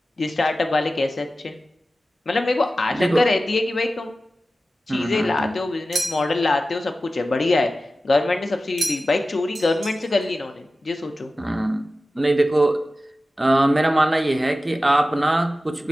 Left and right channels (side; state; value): both; normal; correlation 0.94